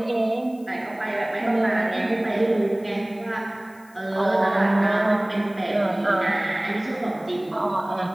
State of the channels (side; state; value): left; noise; hiss, 27 dB below the sound